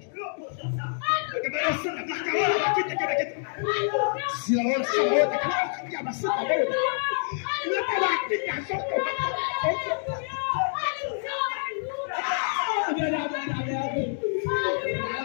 que me la santa la cara, la quita que me quita. Si la hora se va a cara, que la santa cara. La que la quita santa.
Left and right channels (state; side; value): silent; right; digital silence